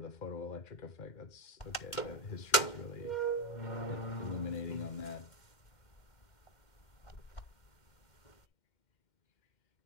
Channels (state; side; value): late; right; 2.1 ms